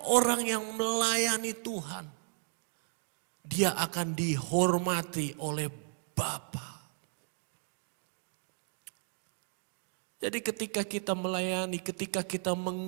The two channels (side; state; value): left; silent; 55 dB below the other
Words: orang yang melayani Tuhan, dia akan dihormati oleh Bapa. Jadi ketika kita melayani, ketika kita